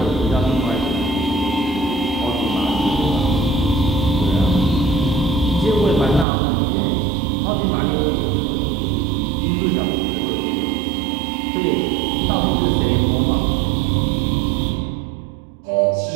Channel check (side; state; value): left; drops out; at 6.2 s